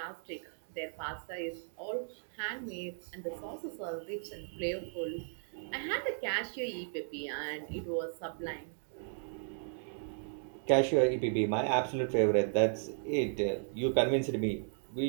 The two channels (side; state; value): left; silent; digital silence